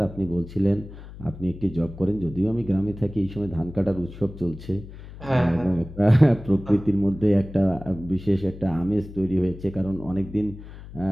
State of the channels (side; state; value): left; noise; hum, 15 dB below the sound